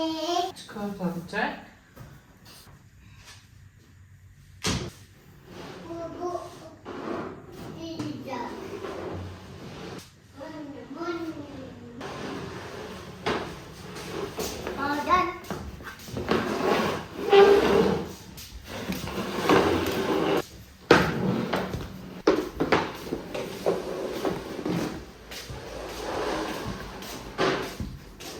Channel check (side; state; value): both; identical; correlation 1.00